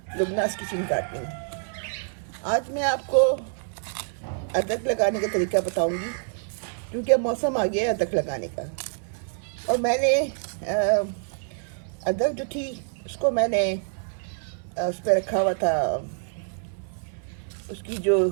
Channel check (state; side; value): silent; left; 58 dB below the other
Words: लुबनास किचन गार्डनिंग। आज मैं आपको अदरक लगाने का तरीका बताऊंगी, क्योंकि अब मौसम आ गया है अदरक लगाने का। और मैंने अदरक जो थी उसको मैंने उस पर रखा हुआ था। उसकी जो